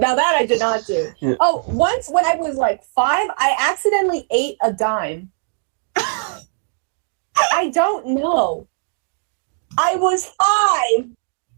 I did not do. Yeah. Oh, once when I was like 5, I accidentally ate a dime. I don't know. I was 5.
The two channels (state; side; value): silent; left; digital silence